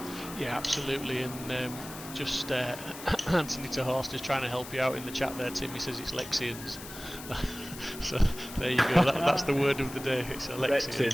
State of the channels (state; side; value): noise; left; hiss, 13 dB below the sound